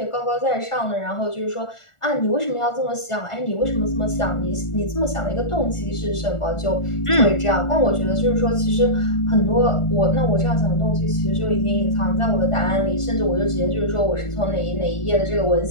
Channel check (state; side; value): late; right; 1.4 ms